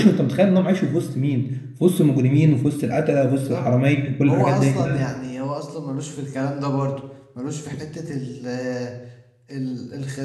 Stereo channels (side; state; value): both; identical; correlation 1.00